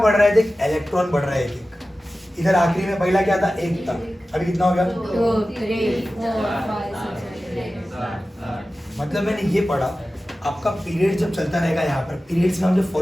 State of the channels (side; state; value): both; normal; correlation 0.95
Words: रहा है? देख इलेक्ट्रॉन बढ़ रहा है एक। इधर आखिरी में पहला क्या था? 1 था, अभी कितना हो गया? 2 3 4 5 6 मतलब मैंने ये पढ़ा, आपका पीरियड जब चलता रहेगा, यहाँ पर पीरियड्स में हम जब